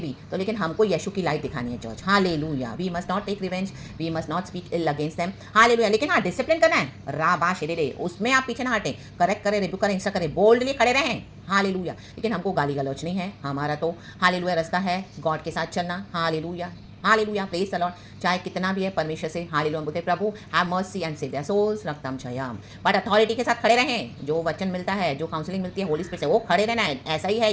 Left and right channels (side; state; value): both; identical; correlation 1.00